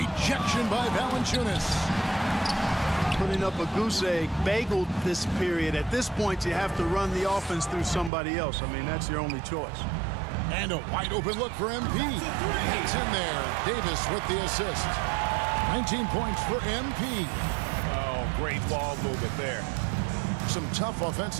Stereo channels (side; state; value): left; drops out; at 8.1 s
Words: by Valanciunas. Putting up a goose egg, bageled this period. At this point, you have to run the offense through somebody else. I mean, that's your only choice. And a wide open look for MP. It's in there. Davis with the assist. 19 points for MP. Oh, great ball movement there. Some tough